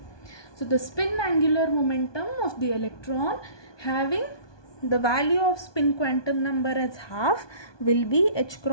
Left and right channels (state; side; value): late; right; 1.2 ms